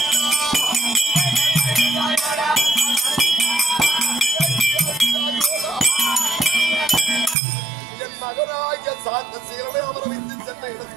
என் மகனாகிய சாந்த சீரனை அவரை வைத்து சென்ற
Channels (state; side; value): drops out; left; at 7.4 s